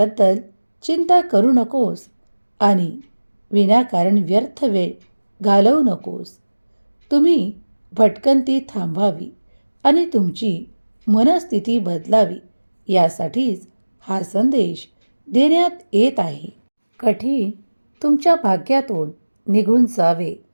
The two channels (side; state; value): both; inverted; correlation -1.00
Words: चिंता करू नकोस आणि विनाकारण व्यर्थ वेळ घालवू नकोस. तुम्ही भटकंती थांबावी आणि तुमची मनस्थिती बदलावी यासाठीच हा संदेश देण्यात येत आहे. कठीण तुमच्या भाग्यातून निघून जावे